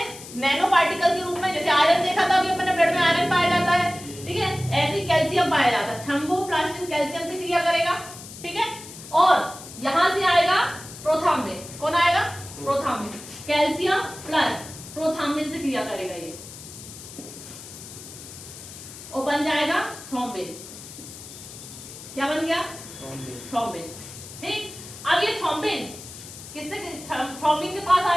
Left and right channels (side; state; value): left; noise; hiss, 14 dB below the sound